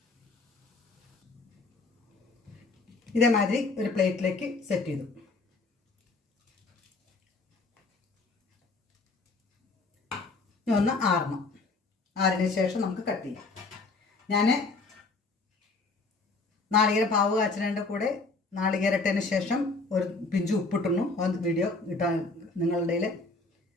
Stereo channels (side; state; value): right; quieter; 3.6 dB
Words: ഇതേമാതിരി ഒരു പ്ലേറ്റിലേക്ക് സെറ്റ് ചെയ്തു. ഒന്ന് ആറിന് ശേഷം നമുക്ക് കട്ട് ചെയ്യാം. ഞാൻ നാളികേരം പാവ് കാച്ചതിൻ്റെ കൂടെ നാളികേരട്ടതിന് ശേഷം ഒരു പിഞ്ച് ഉപ്പിട്ടുന്നു. അത് വീഡിയോ ഇട്ടാൻ നിങ്ങളുടെ കയ്യിൽ